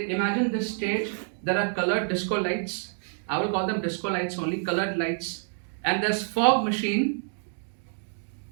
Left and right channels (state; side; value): silent; left; 60 dB below the other